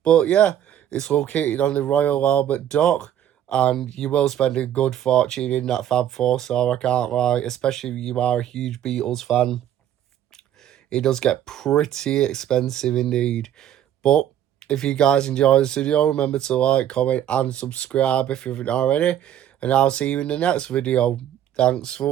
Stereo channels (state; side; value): quieter; left; 10.9 dB